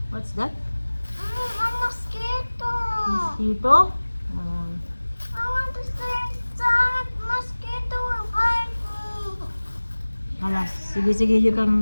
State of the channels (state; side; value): inverted; both; correlation -1.00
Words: What's that? A mosquito. Mosquito? I want to stay inside. Mosquito will bite me. Alas, sige, you